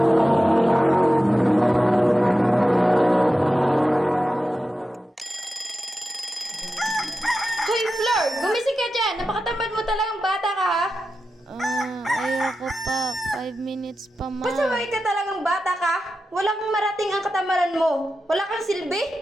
Hoy, Flor! Gumising ka dyan! Napakatamad mo talagang bata ka, ha? Ayoko pa. 5 minutes pa, ma. Pasaway ka talagang bata ka! Wala kang marating ang katamaran mo! Wala kang silbi!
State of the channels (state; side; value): normal; both; correlation 0.91